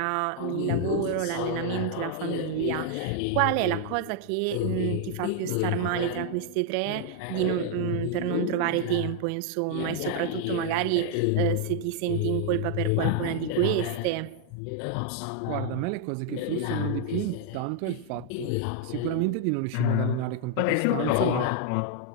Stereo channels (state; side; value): different; both; correlation 0.00